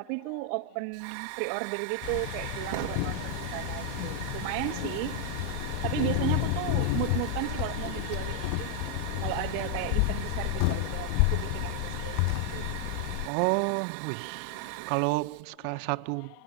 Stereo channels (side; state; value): both; different; correlation 0.00